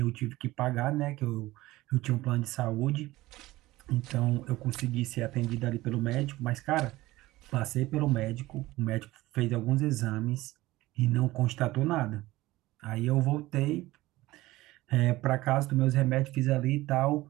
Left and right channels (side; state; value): left; quieter; 18.1 dB